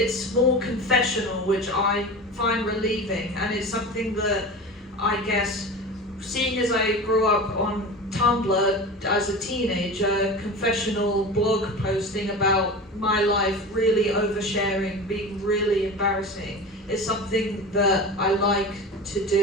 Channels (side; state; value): both; normal; correlation 0.32